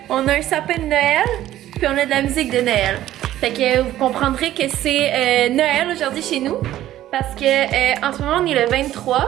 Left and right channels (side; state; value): left; quieter; 13.5 dB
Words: on a un sapin de Noël, puis on a de la musique de Noël. Fait que vous comprendrez que c'est Noël aujourd'hui chez nous. Parce que en ce moment, on est le